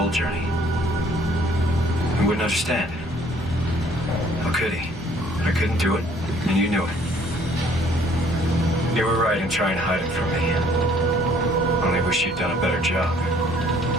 journey. He wouldn't understand. How could he? I couldn't do it, and you knew it. You were right in trying to hide it from me. Only wish you'd done a better job.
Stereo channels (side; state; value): both; normal; correlation 0.59